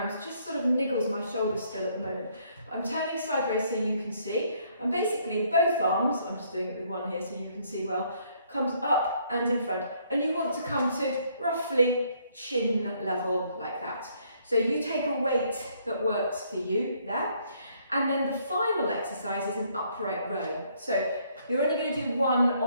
just sort of niggles my shoulder still at the moment. I'm turning sideways so you can see, and basically both arms, I'm just doing it with one here so you can see well, comes up and in front, and you want to come to roughly chin level like that. So you take a weight that works for you there, and then the final exercise is an upright row. So you're only going to do 1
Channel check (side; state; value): both; inverted; correlation -0.67